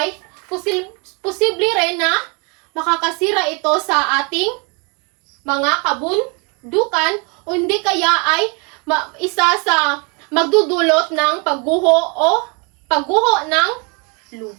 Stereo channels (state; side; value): quieter; left; 33.1 dB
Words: posible rin na makakasira ito sa ating mga kabundukan o hindi kaya ay isa sa magdudulot ng pagguho ng